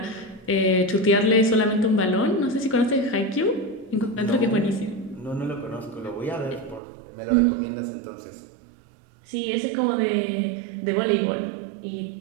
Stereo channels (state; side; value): drops out; left; at 6.8 s